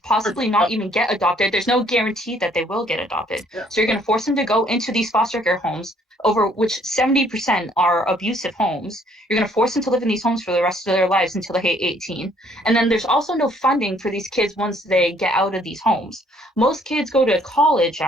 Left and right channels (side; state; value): both; normal; correlation 0.63